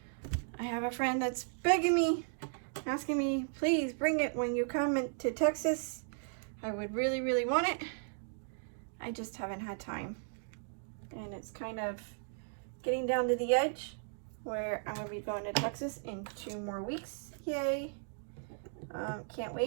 I have a friend that's begging me, asking me, please bring it when you come to Texas. I would really want it. I just haven't had time. And it's kind of getting down to the edge where I'll be going to Texas in 2 more weeks. Yay. Can't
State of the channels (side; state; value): left; silent; digital silence